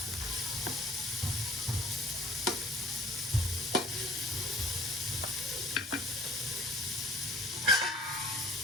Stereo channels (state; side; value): normal; both; correlation 0.53